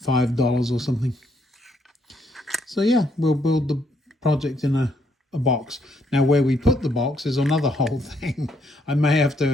$5 or something. So yeah, we'll build the project in a box. Now where we put the box is another whole thing. I may have to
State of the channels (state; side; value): normal; both; correlation 0.72